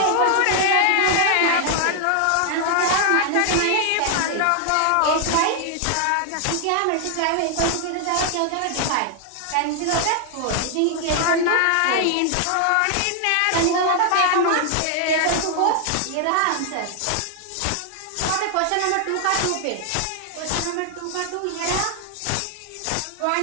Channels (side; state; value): both; different; correlation 0.00